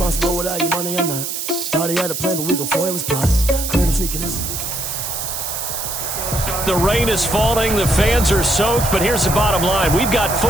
without your money or not? Thought he had a plan, but we gon' foil his plot. Heard him sneaking in. The rain is falling, the fans are soaked, but here's the bottom line. We've got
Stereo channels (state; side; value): noise; right; hiss, 4 dB below the sound